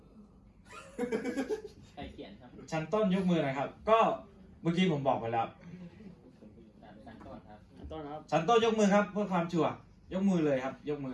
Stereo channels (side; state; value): both; identical; correlation 1.00